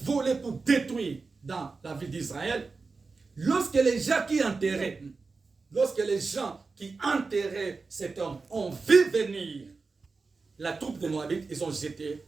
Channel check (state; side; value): quieter; left; 4.2 dB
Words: pour détruire dans la ville d'Israël. Lorsque les gens qui enterraient, cet homme ont vu venir la troupe de Moabites, ils ont jeté